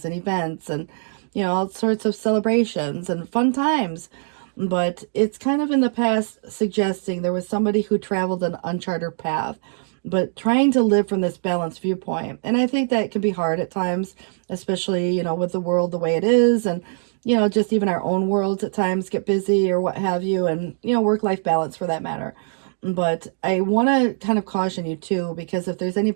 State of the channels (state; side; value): silent; left; digital silence